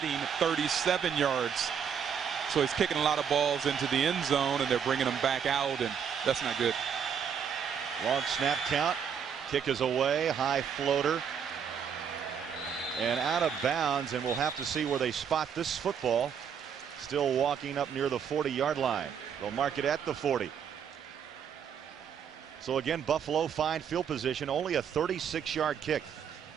37 yards. So he's kicking a lot of balls into the end zone, and they're bringing them back out, and that's not good. Long snap count. Kick is away. High floater. And out of bounds, and we'll have to see where they spot this football. Still walking up near the 40-yard line. They'll mark it at the 40. So again, Buffalo fine field position, only a 36-yard kick.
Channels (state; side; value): quieter; left; 7.6 dB